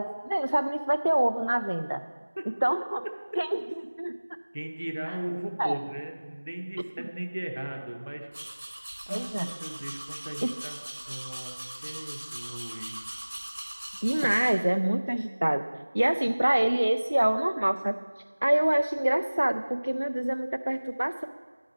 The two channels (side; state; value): both; inverted; correlation -1.00